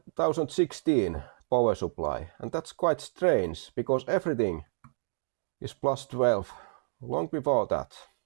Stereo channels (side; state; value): left; silent; digital silence